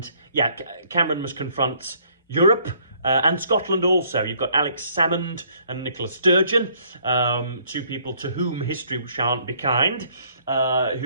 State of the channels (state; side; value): inverted; both; correlation -0.64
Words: must confront Europe, and Scotland also. You've got Alex Salmond and Nicola Sturgeon, two people to whom history shan't be kind,